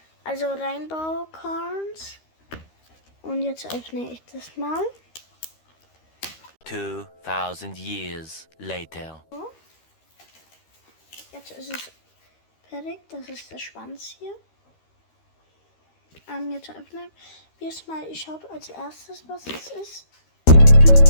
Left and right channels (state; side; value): late; right; 13 ms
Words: also Rainbow Corns, und jetzt öffne ich das mal. 2000 years later. So. Jetzt ist es fertig, das ist der Schwanz hier. Jetzt öffnen wir es mal, ich schaue als erstes, was es ist.